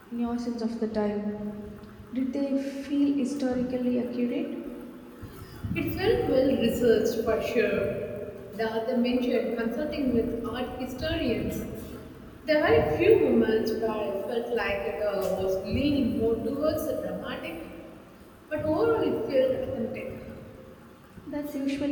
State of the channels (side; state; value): both; identical; correlation 1.00